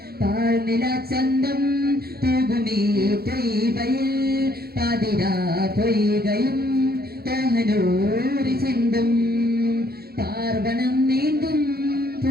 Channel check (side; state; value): left; late; 0.45 ms